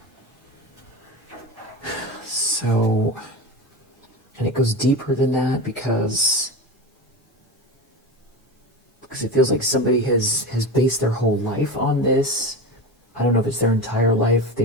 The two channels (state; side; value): normal; both; correlation 0.25